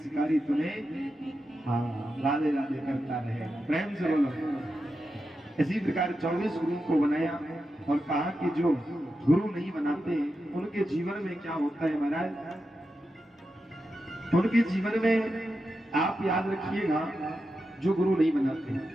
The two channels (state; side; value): normal; both; correlation 0.89